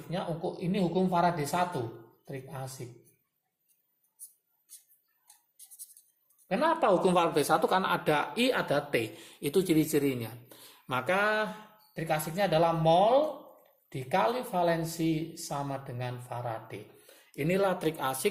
ini hukum Faraday 1. Trik asik. Kenapa hukum Faraday 1? Karena ada I, ada T. Itu ciri-cirinya. Maka trik asiknya adalah mol dikali valensi sama dengan Faraday. Inilah trik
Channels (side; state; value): both; identical; correlation 1.00